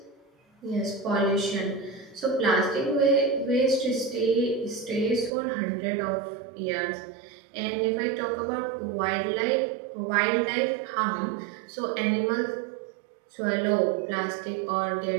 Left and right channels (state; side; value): drops out; left; at 5.3 s